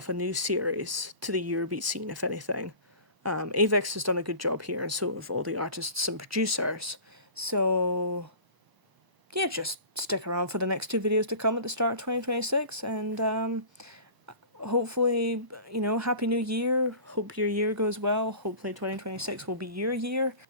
a new series to the Eurobeat scene, if anything. Avex has done a good job here, and so have all the artists and producers. So, yeah, just stick around for the next 2 videos to come at the start of 2026, and hopefully, Happy New Year. Hope your year goes well. Hopefully 2026 will be your year.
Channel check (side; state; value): left; late; 1.0 ms